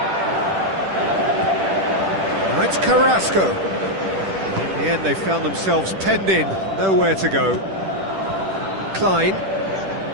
Now it's Carrasco. In the end they found themselves penned in, nowhere to go. Klein.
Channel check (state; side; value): late; left; 10 ms